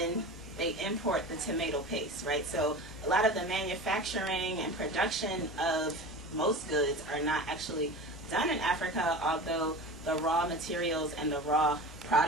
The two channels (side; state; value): both; normal; correlation 0.32